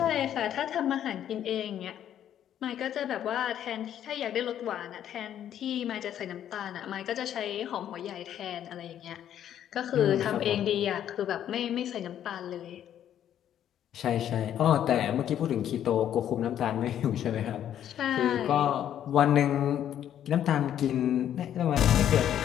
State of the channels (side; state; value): right; quieter; 10.5 dB